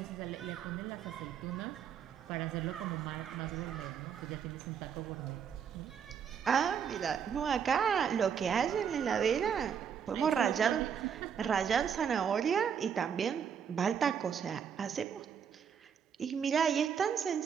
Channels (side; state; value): left; quieter; 7.6 dB